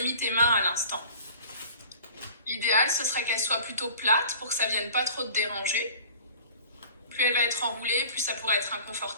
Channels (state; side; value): inverted; both; correlation -0.45